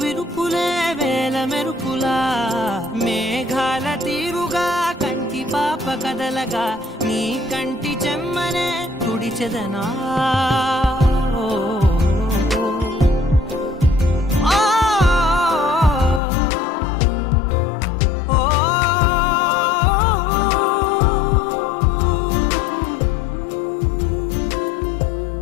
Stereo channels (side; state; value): right; drops out; at 16.2 s